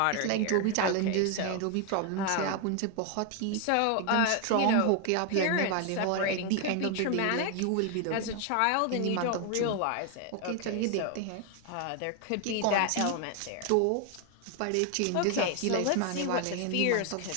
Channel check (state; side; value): different; both; correlation 0.01